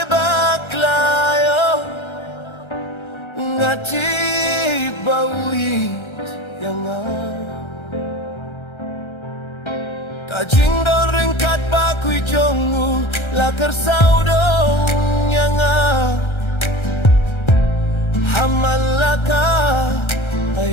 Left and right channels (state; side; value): late; right; 1.3 ms